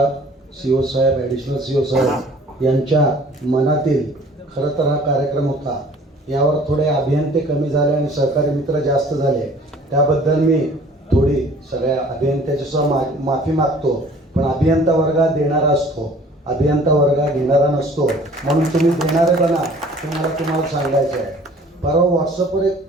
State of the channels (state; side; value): normal; both; correlation 0.51